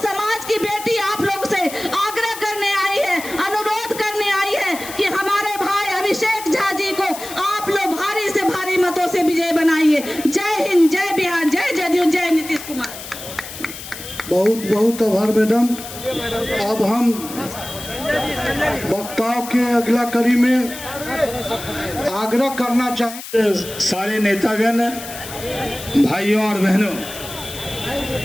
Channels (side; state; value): left; noise; hiss, 12 dB below the sound